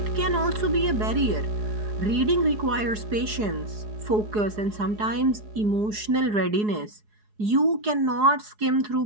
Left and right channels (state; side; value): late; left; 4.7 ms